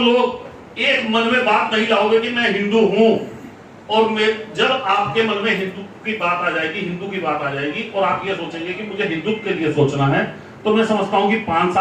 एक मन में बात नहीं लाओगे कि मैं हिंदू हूं, और जब आपके मन में हिंदू की बात आ जाएगी, हिंदू की बात आ जाएगी और आप ये सोचेंगे कि मुझे हिंदुत्व के लिए सोचना है, तो मैं समझता हूं कि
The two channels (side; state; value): both; identical; correlation 1.00